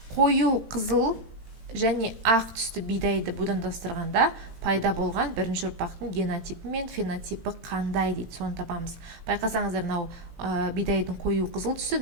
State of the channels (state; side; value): late; left; 18 ms